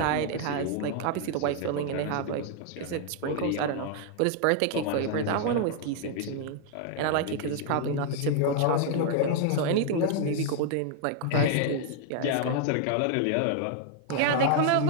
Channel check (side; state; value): both; different; correlation 0.00